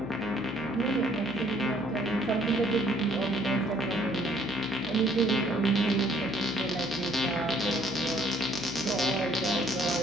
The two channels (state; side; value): noise; left; hum, 16 dB below the sound